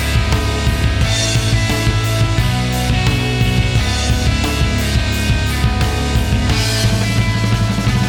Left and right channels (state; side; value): identical; both; correlation 1.00